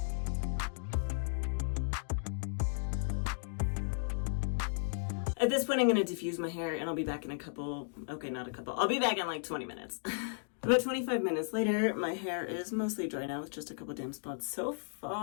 At this point, I'm going to diffuse my hair and I'll be back in I'll be back in like 20 minutes. About 25 minutes later, my hair is mostly dry now with just a couple damp spots. So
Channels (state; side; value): silent; right; digital silence